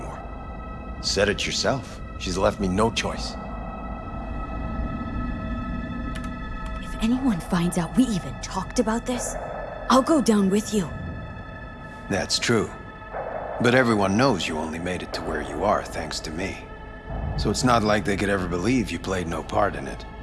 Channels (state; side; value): identical; both; correlation 1.00